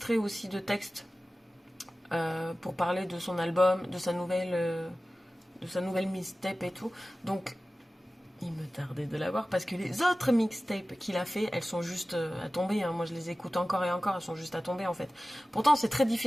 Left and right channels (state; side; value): normal; both; correlation 0.96